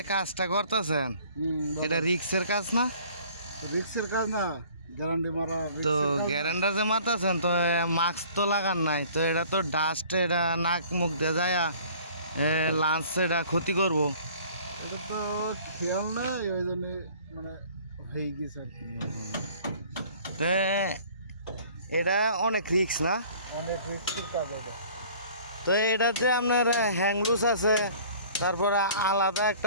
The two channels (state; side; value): inverted; both; correlation -0.51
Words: কাজটা করতেছেন, এটা রিক্সের কাজ না? রিক্সের কাজ না, গ্যারান্টি মারা। তো গ্যারেন্ডার যে মারতেছেন, তো মাস্ক তো লাগান নাই, তো এটা তো ডাস্ট, এটা নাক মুখ দিয়ে যায় লাঞ্চ, এটা ক্ষতি করবো। এটা তো খেয়াল নাই, ওই জন্য মানে হয়ে গেছে আর কি। তো এটা অনেক রিক্স না? অনেক রিক্সের কাজ এটা। তো এটা যে আপনার হ্যাংলুস আছে, তারপরে আলাদা